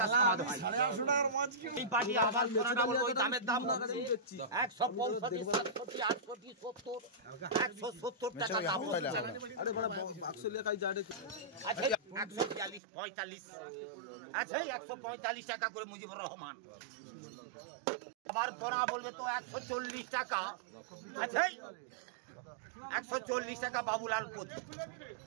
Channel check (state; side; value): drops out; left; at 12.8 s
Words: সমাদ হয়। এই পার্টি আবার পড়াটা বলবো ওই দামের দাম 165, 67, 68, 70, 170 টাকা দাম হচ্ছে। আচ্ছা 142, 45, আচ্ছা 145 টাকা করে মুজিবুর রহমান। আবার পড়া বলবে তো 140 টাকা, আচ্ছা 140 টাকা বাবুলাল পতি।